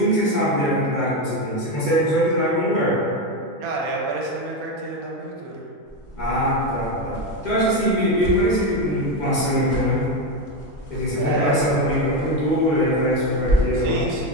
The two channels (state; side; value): normal; both; correlation 0.12